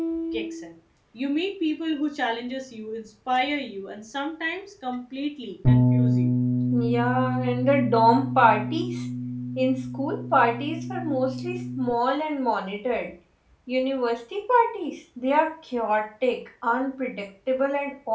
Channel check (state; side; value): identical; both; correlation 1.00